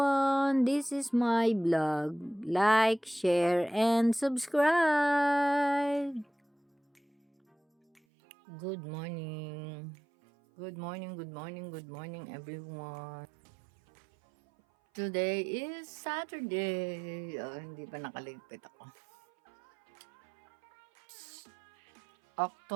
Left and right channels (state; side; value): drops out; left; at 8.0 s